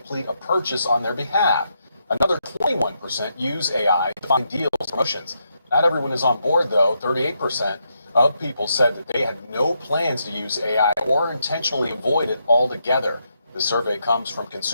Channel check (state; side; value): inverted; both; correlation -0.80